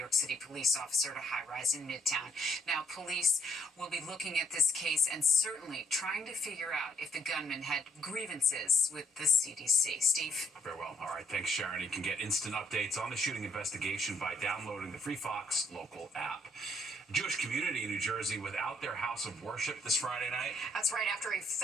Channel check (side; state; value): both; normal; correlation 0.67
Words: City police officer at a high-rise in Midtown. Now, police will be looking at this case and certainly trying to figure out if the gunman had grievances with the CDC. Steve? Very well. All right. Thanks, Sharon. You can get instant updates on the shooting investigation by downloading the free Fox local app. Jewish community in New Jersey without their house of worship this Friday night. That's right. After a